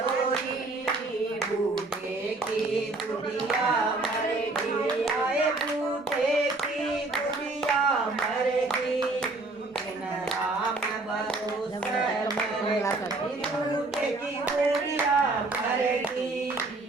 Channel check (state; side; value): quieter; left; 3.2 dB